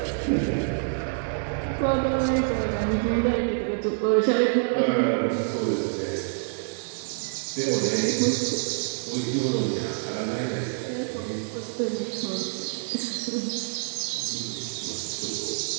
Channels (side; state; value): left; silent; digital silence